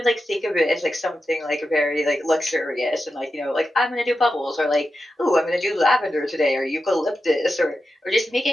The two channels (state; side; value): normal; both; correlation 0.90